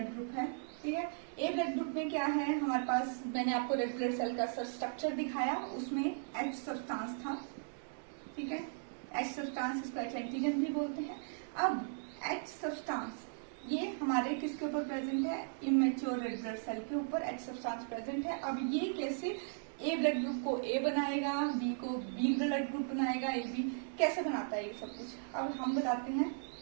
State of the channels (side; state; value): left; silent; digital silence